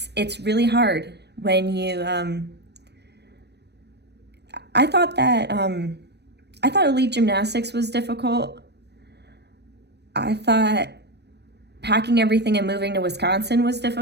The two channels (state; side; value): late; left; 0.49 ms